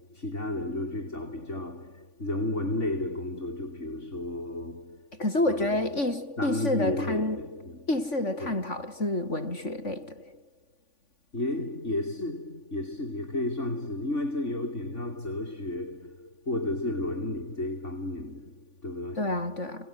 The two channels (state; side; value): late; right; 3.5 ms